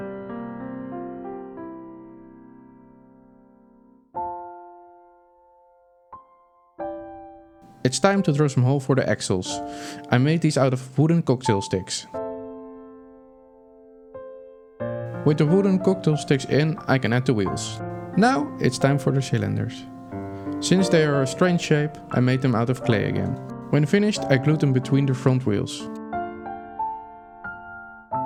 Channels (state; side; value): identical; both; correlation 1.00